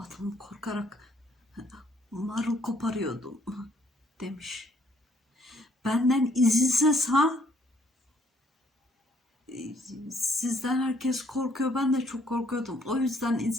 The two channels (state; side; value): normal; both; correlation 0.65